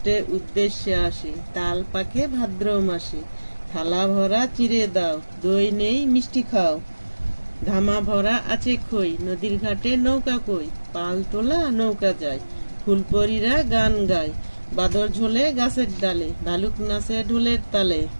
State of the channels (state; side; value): inverted; both; correlation -1.00